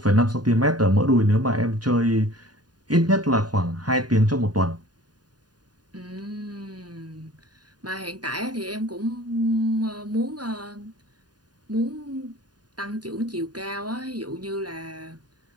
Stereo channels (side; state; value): left; late; 0.70 ms